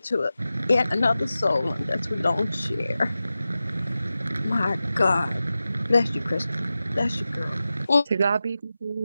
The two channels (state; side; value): inverted; both; correlation -0.94